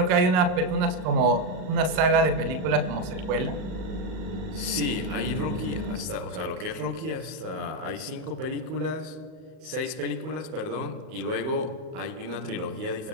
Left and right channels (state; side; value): late; left; 38 ms